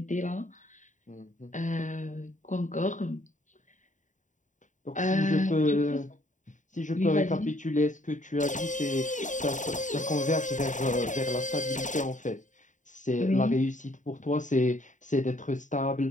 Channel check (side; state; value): right; late; 0.36 ms